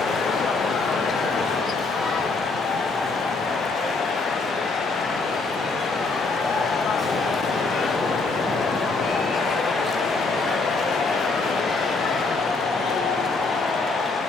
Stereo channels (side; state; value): right; quieter; 3.8 dB